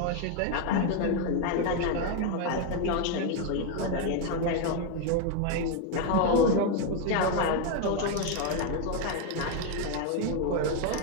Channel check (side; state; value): both; different; correlation 0.01